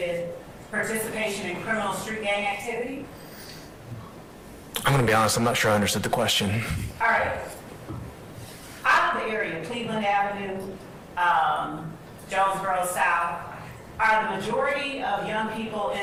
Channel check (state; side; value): identical; both; correlation 1.00